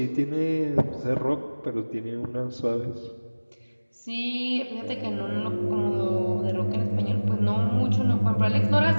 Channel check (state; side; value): inverted; both; correlation -1.00